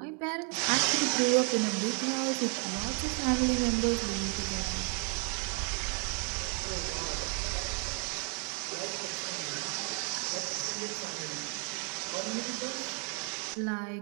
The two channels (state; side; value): quieter; left; 34.0 dB